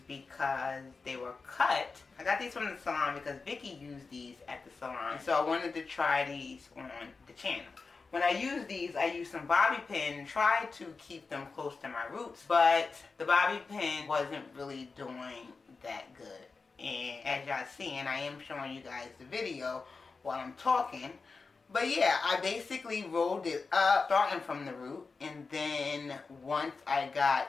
because they were cut. I got these from the salon because Vicky used these at the salon, so I wanted to try these on the channel. When I use these, I use some bobby pin, try to keep them close to my roots, but the bobby pin wasn't really doing that good. And as y'all seeing, I am showing you guys the video while I'm talking. But yeah, I basically rolled it up, starting from the root, and then once I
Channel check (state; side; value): quieter; right; 4.4 dB